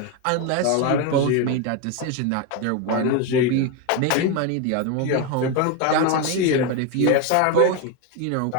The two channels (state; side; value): different; both; correlation 0.03